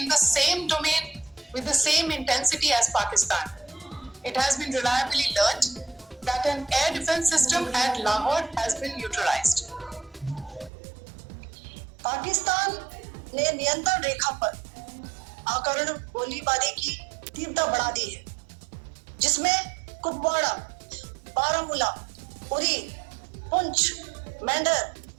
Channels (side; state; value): left; drops out; at 10.7 s